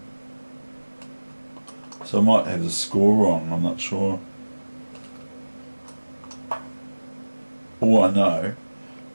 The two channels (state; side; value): inverted; both; correlation -1.00